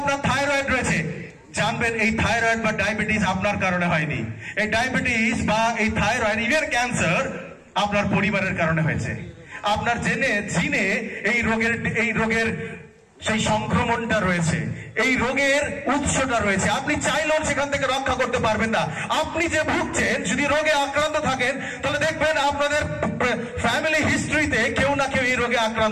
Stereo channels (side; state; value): both; identical; correlation 1.00